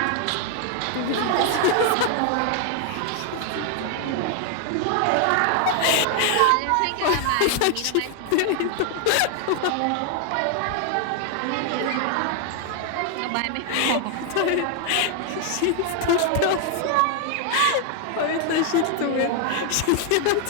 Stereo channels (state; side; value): different; both; correlation 0.00